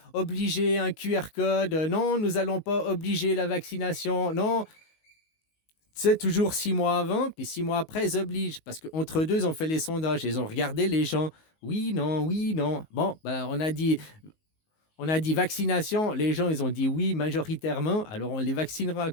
obliger un QR code. Non, nous n'allons pas obliger la vaccination. Non, c'est toujours 6 mois avant, puis 6 mois après, ils obligent. Parce qu'entre deux, ils ont fait les sondages. Ils ont regardé les gens. Oui, non, oui, non. Bon, ben, on a dit vaccination. Les gens, ils ont dit oui majoritairement. Alors, on les vaccinera,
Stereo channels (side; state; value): right; late; 19 ms